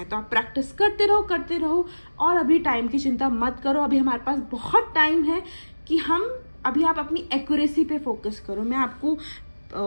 तो आप प्रैक्टिस करते रहो और अभी टाइम की चिंता मत करो। अभी हमारे पास बहुत टाइम है कि अभी आप अपनी एक्यूरेसी पे फोकस करो। मैं आपको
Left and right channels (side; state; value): both; inverted; correlation -1.00